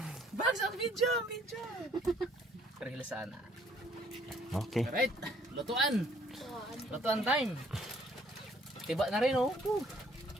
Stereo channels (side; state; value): both; normal; correlation 0.61